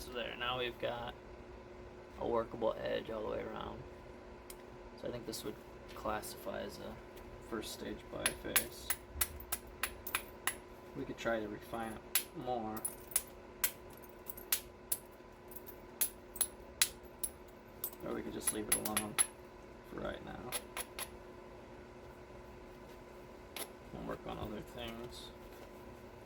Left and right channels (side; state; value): both; identical; correlation 1.00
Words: there, now we've got a workable edge all the way around. So I think this would classify as a first stage biface. We could try to refine it more. Or we could just leave it alone for right now. And work on other things.